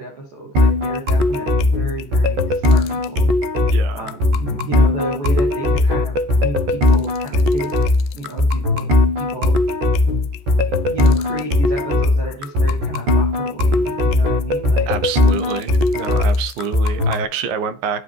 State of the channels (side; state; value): left; late; 14 ms